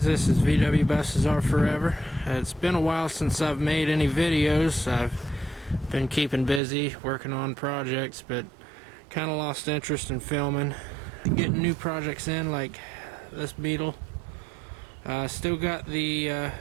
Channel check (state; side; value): drops out; left; at 6.6 s